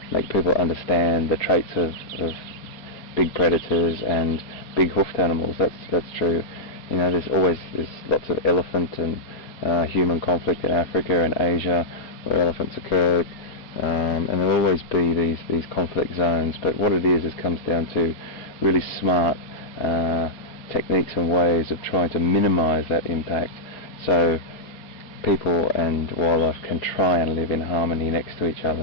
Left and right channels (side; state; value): right; late; 4.3 ms